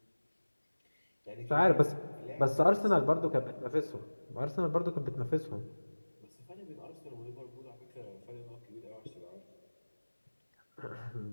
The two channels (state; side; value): inverted; both; correlation -1.00